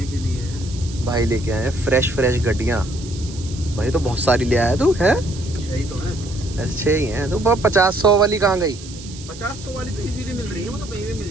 के लिए है। भाई लेके आए फ्रेश गड्डियाँ। भाई तो बहुत सारी ले आया तू है। सही तो है। अच्छे ही हैं तो 50-100 वाली कहाँ गई? 50-100 वाली तो इजीली मिल रही है, वो तो कहीं भी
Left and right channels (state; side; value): noise; right; hiss, 16 dB below the sound